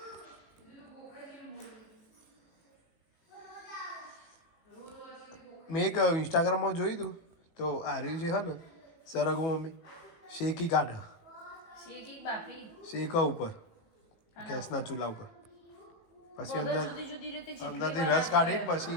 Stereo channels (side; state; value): right; late; 18 ms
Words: મેં એક ઇન્સ્ટાગ્રામમાં જોયું હતું તો આ રહ્યું છે હા ને સરગવો મમ્મી શેકી કાઢ શેકી બાફી શેકા ઉપર ગેસના ચૂલા ઉપર પછી અંદર જુદી જુદી રીતે અંદરથી રસ કાઢીને પછી